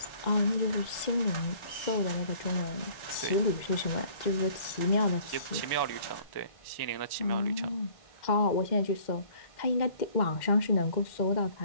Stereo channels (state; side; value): late; right; 2.1 ms